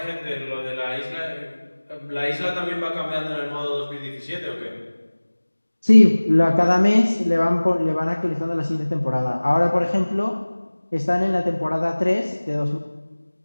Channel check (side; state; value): both; inverted; correlation -1.00